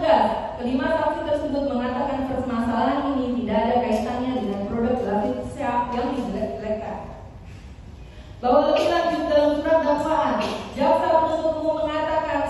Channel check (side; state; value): both; identical; correlation 1.00